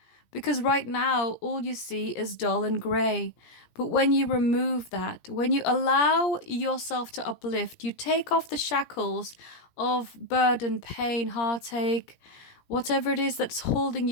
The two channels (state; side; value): late; right; 17 ms